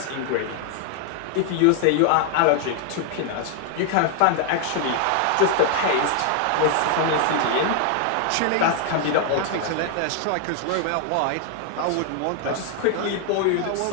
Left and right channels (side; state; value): both; different; correlation 0.00